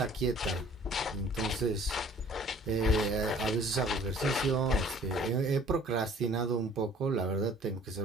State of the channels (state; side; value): normal; both; correlation 0.53